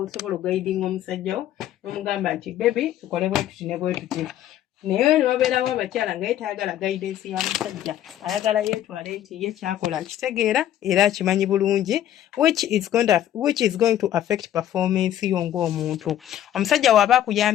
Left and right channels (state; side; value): quieter; right; 11.8 dB